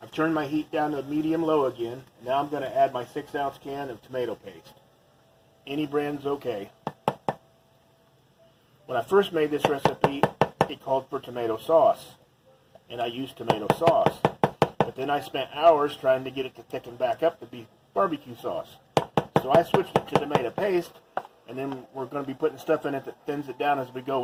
I've turned my heat down to medium-low again. Now I'm going to add my 6-ounce can of tomato paste. Any brand's okay. When I first made this recipe, it called for tomato sauce, and I used tomato sauce. But then I spent hours trying to get it to thicken back up to be barbecue sauce. So I switched it to tomato paste, and then we're going to be putting stuff in it that thins it down as we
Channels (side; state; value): both; identical; correlation 1.00